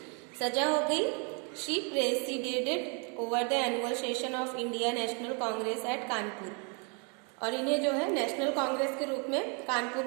सजा हो गई। She presided over the annual session of India National Congress at Kanpur. और इन्हें जो है नेशनल कांग्रेस के रूप में कानपुर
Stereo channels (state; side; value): quieter; left; 36.5 dB